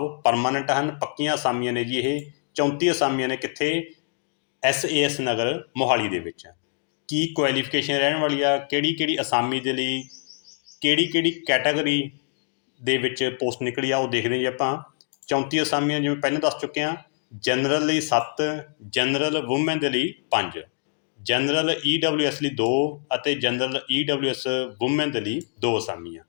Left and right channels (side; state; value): right; silent; 62 dB below the other